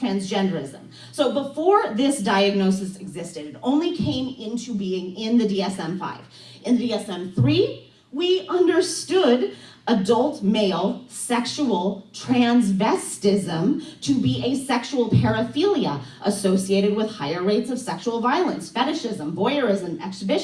So before this diagnosis existed, it only came into being in the DSM-5. In the DSM-3, we understood adult male sexual transvestism to be a sexual paraphilia associated with higher rates of sexual violence, fetishism, voyeurism,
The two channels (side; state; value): both; identical; correlation 1.00